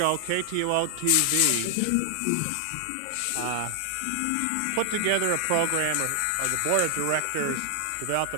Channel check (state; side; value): different; both; correlation 0.00